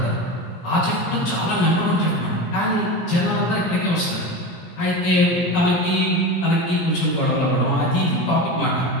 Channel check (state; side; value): late; right; 17 ms